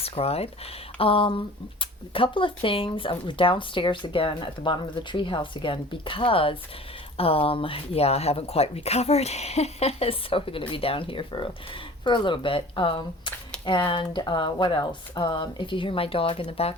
A couple of things. We're downstairs again at the bottom of the treehouse again because yeah, I haven't quite recovered, so we're going to be down here for a little bit. And what else? If you hear my dog in the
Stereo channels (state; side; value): normal; both; correlation 0.44